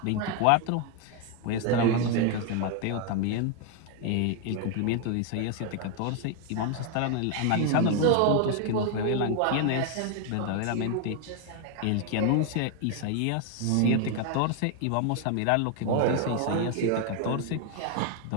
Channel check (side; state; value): both; different; correlation 0.01